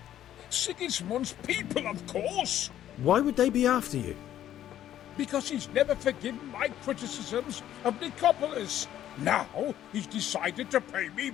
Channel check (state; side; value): quieter; right; 11.7 dB